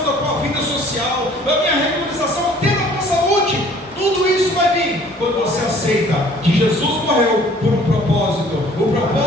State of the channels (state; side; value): normal; both; correlation 0.54